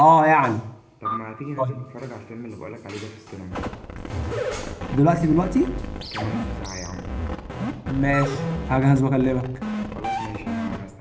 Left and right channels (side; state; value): both; identical; correlation 1.00